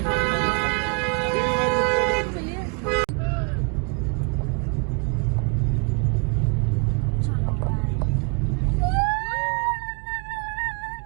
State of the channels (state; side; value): quieter; left; 36.3 dB